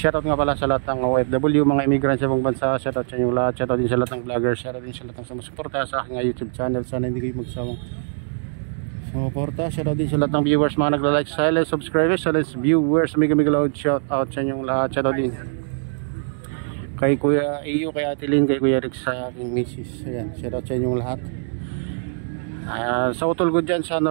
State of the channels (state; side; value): silent; left; digital silence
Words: nga pala sa lahat ng OFW, mga immigrants sa ibang bansa. Shoutout sa inyo lahat, shoutout din sa lahat ng vloggers, shoutout din sa lahat ng sumusuporta sa aking YouTube channel. Sana hindi kayo magsawang sumuporta. Shoutout din sa lahat ng viewers, mga nagla-like, silent subscribers, silent viewers, mega loud shoutout sa inyong lahat. Shoutout din kay Kuya Iyo, kay Ate Lynn, kay Kuya Rex, sa aking misis. Ayan, shoutout sa inyong lahat. Sa utol ko dyan sa